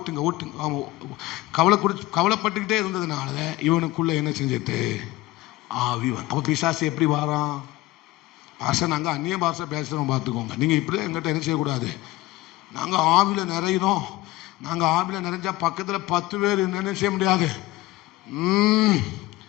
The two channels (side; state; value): right; quieter; 18.1 dB